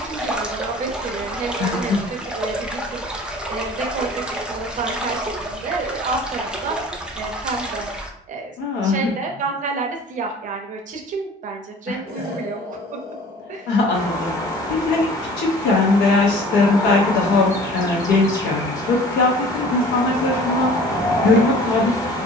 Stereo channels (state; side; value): normal; both; correlation 0.46